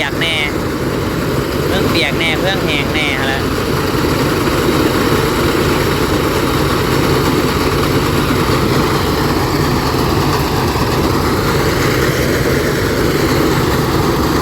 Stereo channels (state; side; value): identical; both; correlation 1.00